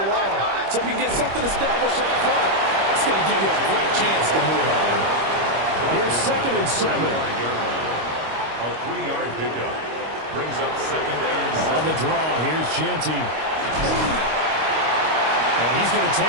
along. So if you can get something established up front, it's going to give you a great chance to move on. Here's 2nd and 7. A 3-yard pickup brings up 2nd and 7. On the draw, here's Genty. And he's going to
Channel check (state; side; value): late; left; 25 ms